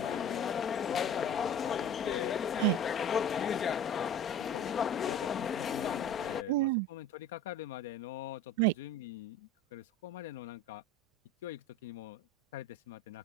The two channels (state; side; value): normal; both; correlation 0.39